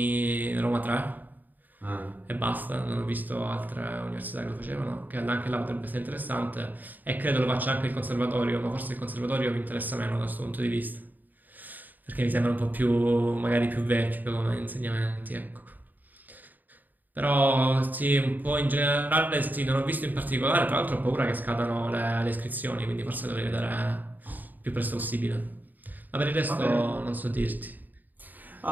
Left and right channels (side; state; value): left; late; 0.086 ms